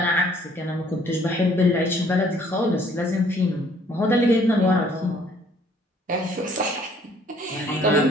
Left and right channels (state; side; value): normal; both; correlation 0.60